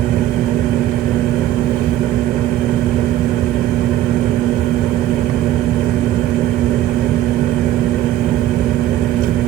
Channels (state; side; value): quieter; left; 13.1 dB